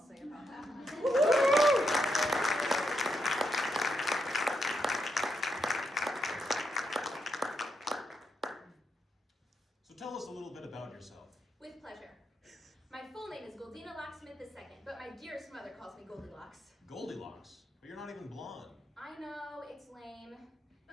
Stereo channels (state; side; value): normal; both; correlation 0.82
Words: say about that. So tell us a little bit about yourself. With pleasure. My full name is Goldina Locksmith II, but my dearest mother calls me Goldilocks. Goldilocks? But you're not even blonde. I know, it's lame.